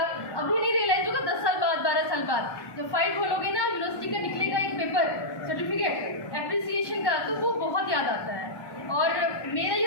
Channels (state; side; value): late; right; 1.1 ms